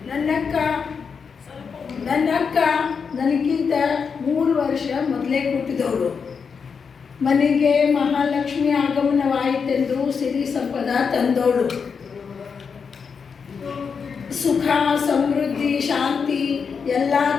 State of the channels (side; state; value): right; quieter; 5.9 dB